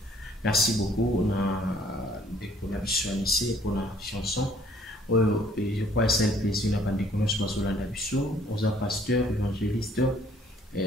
Merci beaucoup. On a des connexions ici pour la chanson. Et je crois que c'est un plaisir d'avoir des connexions sur la nation. On a pasteur, évangéliste,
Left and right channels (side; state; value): both; normal; correlation 0.61